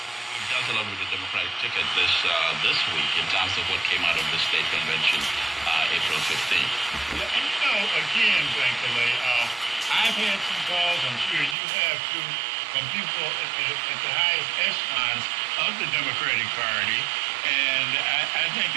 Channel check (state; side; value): drops out; left; at 11.6 s